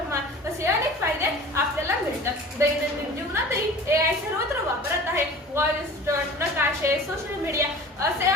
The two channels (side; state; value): both; normal; correlation 0.41